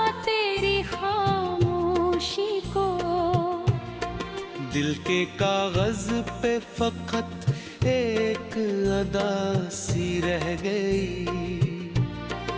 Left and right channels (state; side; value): identical; both; correlation 1.00